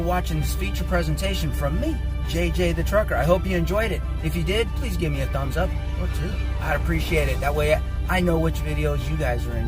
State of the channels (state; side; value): identical; both; correlation 1.00